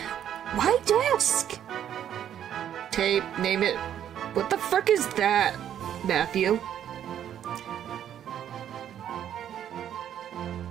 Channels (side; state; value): left; quieter; 10.1 dB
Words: Why desk? Tape, name it. What the frick is that, Matthew?